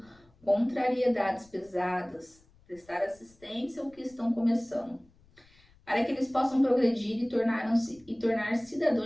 contrariedades pesadas, prestar assistência aos que estão começando, para que eles possam progredir e tornar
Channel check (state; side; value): noise; left; rumble, 30 dB below the sound